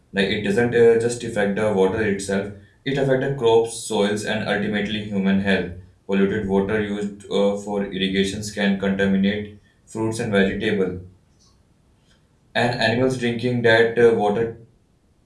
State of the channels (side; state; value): both; identical; correlation 1.00